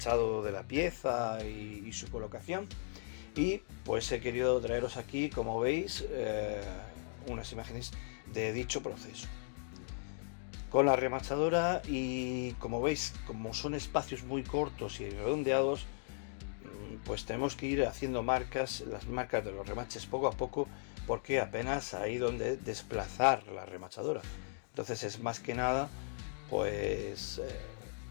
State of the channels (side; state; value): right; silent; digital silence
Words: de la pieza y su colocación, y pues he querido traeros aquí, como veis, unas imágenes de dicho proceso con la remachadora. Y como veis, como son espacios muy cortos y redondeados, pues tenemos que ir haciendo las marcas de los remaches poco a poco, porque apenas hay donde desplazar la remachadora. Entonces es más que nada pues